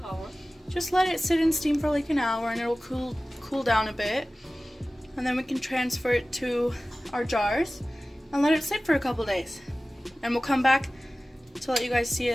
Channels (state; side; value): normal; both; correlation 0.97